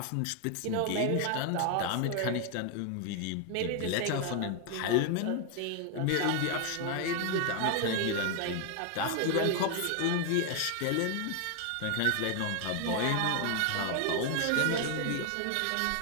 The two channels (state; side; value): different; both; correlation 0.00